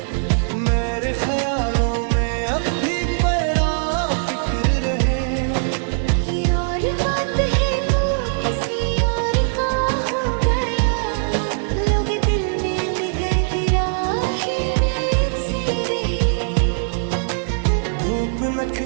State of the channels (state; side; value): silent; left; 65 dB below the other